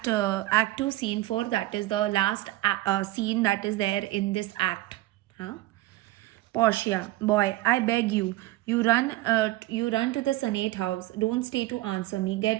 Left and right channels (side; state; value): left; quieter; 17.6 dB